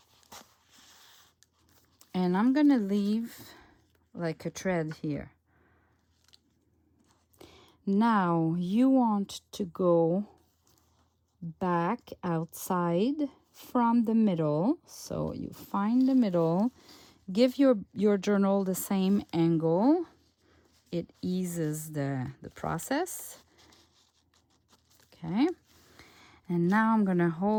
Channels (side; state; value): both; identical; correlation 1.00